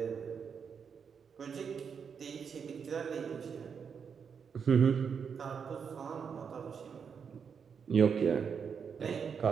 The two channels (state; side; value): quieter; left; 6.6 dB